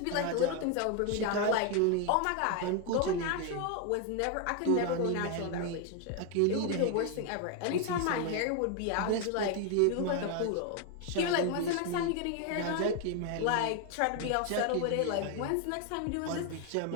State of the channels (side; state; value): both; different; correlation 0.01